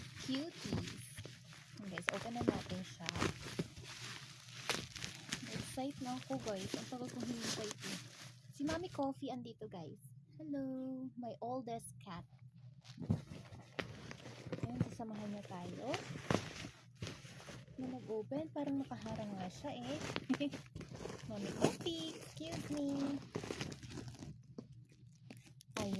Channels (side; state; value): both; identical; correlation 1.00